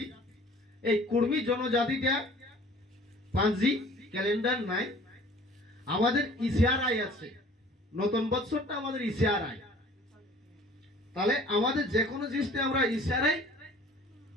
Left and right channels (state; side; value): normal; both; correlation 0.50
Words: এই কুর্মী জনজাতিটা পাঁজি ক্যালেন্ডার নাই, আমাদের ইশারায় আছে। নতুন বৎসরটা আমাদের ইশারায়। তাহলে আমাদের যে কোনো জিনিসটা আমরা ইশারায়